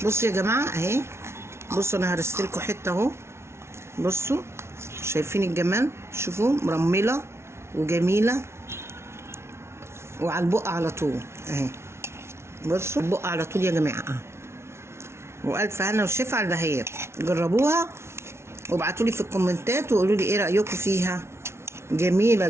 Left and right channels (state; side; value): late; left; 0.13 ms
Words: بصوا يا جماعه اهي. بصوا انا هرست لكم حته اهو. بصوا شايفين الجمال؟ شوفوا مرمله وجميله، وعلى البق على طول اهي. بصوا البق على طول يا جماعه. والف هنا وشفا على البهيات. جربوها وابعتوا لي في الكومنتات وقولوا لي ايه رايكم فيها. جميله